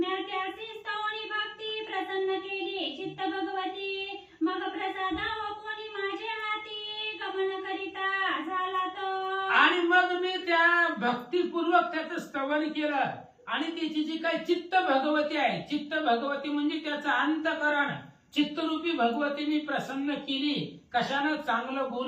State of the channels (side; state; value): both; identical; correlation 1.00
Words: त्याची स्तवनी भक्ती प्रसन्न केली चित्त भगवती. मग प्रसाद कोणी माझे हाती गमन करिता झाला तो. आणि मग मी त्या भक्तीपूर्वक त्याचं स्तवन केलं. आणि त्याची जी काही चित्त भगवती आहे, चित्त भगवती म्हणजे त्याचं अंतकरण, चित्तरूपी भगवती मी प्रसन्न केली. कशानं? चांगलं